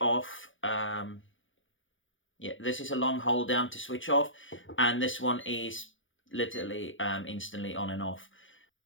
off. Yeah, this is a long hold down to switch off, and this one is literally instantly on and off.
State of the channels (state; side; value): late; right; 0.56 ms